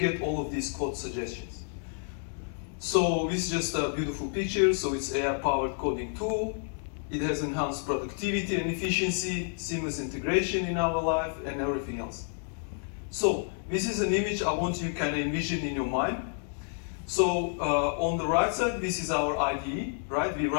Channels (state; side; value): silent; right; 58 dB below the other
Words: all of these code suggestions. So this is just a beautiful picture. So it's AI-powered coding tool. It has enhanced productivity and efficiency, seamless integration in our life, and everything else. So this is an image I want you to kind of envision in your mind. So on the right side, this is our IDE, right? We're